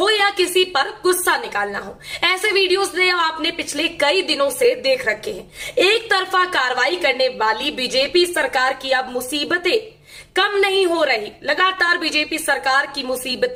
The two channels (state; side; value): identical; both; correlation 1.00